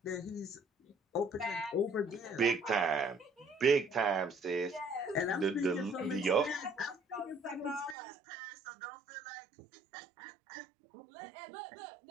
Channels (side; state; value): left; drops out; at 8.0 s